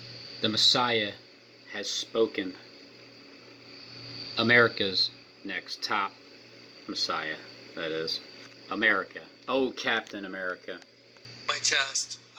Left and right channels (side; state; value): both; identical; correlation 1.00